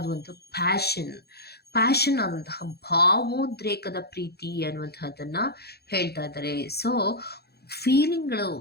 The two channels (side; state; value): right; late; 0.47 ms